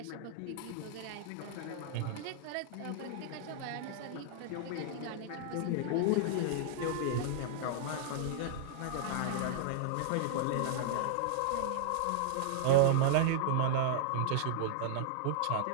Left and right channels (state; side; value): different; both; correlation -0.01